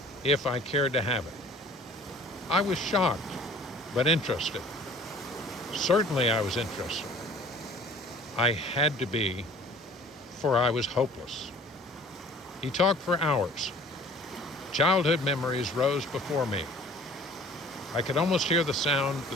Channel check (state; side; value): normal; both; correlation 0.50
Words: if I cared to have it. I was shocked, but interested. Certainly I was interested. I had to be, for I was hopeless. He talked for hours. Childhood memories rose before me. I could almost hear the sound